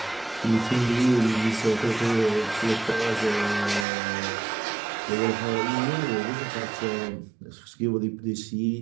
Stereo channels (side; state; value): left; drops out; at 3.9 s